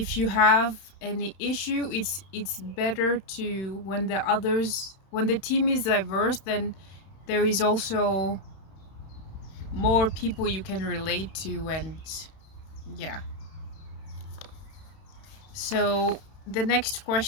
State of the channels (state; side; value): late; right; 31 ms